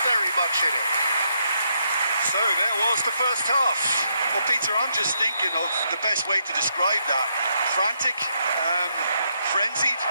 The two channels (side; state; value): both; inverted; correlation -0.77